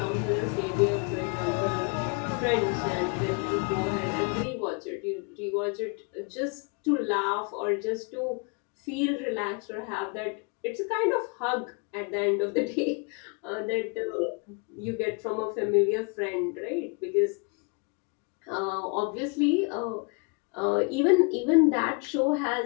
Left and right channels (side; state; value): right; quieter; 34.0 dB